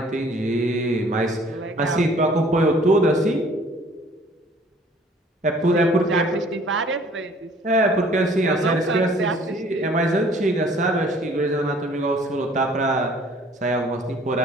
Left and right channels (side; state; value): both; normal; correlation 0.55